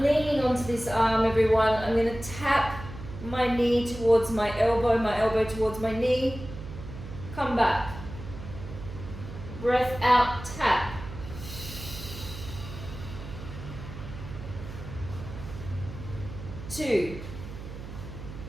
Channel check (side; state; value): right; noise; hum, 11 dB below the sound